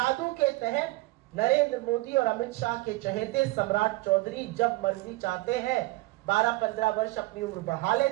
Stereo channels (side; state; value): left; quieter; 21.0 dB